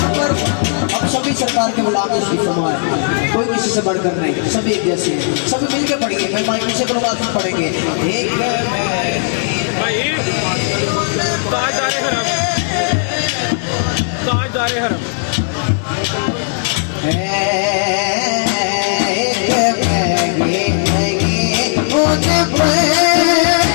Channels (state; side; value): silent; right; digital silence